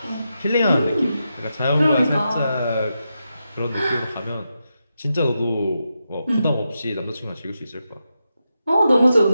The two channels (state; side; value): inverted; both; correlation -0.87